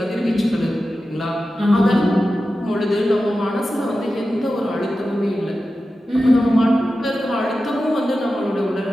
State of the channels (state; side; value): normal; both; correlation 0.93